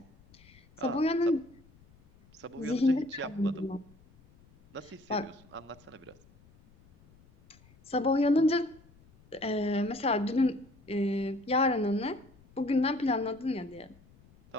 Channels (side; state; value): left; noise; rumble, 27 dB below the sound